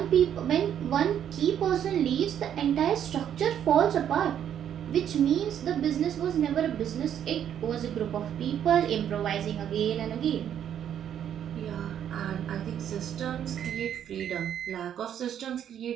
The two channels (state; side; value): quieter; left; 9.6 dB